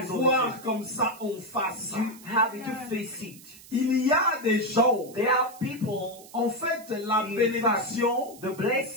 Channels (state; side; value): noise; right; hiss, 20 dB below the sound